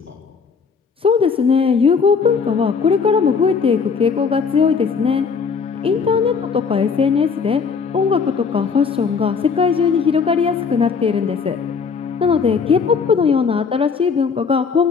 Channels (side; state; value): right; quieter; 5.6 dB